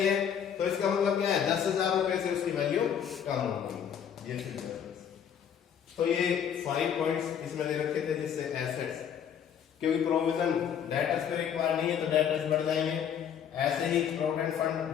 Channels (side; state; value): right; quieter; 8.4 dB